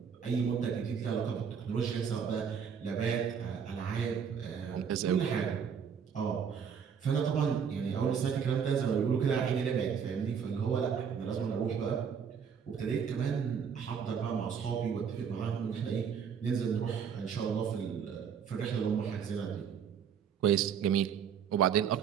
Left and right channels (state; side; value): quieter; left; 7.2 dB